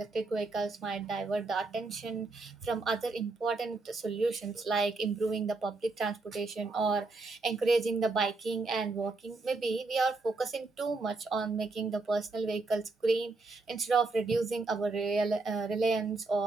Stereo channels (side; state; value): left; quieter; 3.6 dB